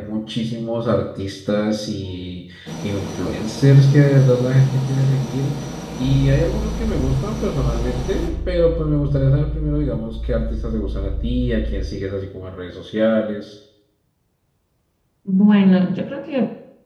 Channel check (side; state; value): both; identical; correlation 1.00